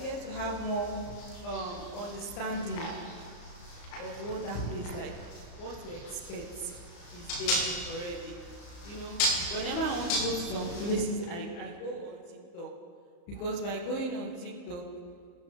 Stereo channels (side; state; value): right; late; 35 ms